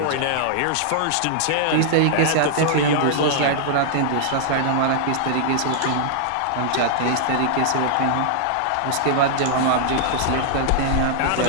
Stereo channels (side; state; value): both; different; correlation -0.01